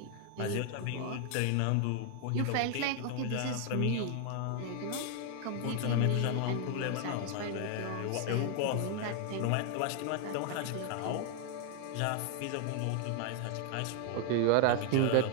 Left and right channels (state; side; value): different; both; correlation 0.00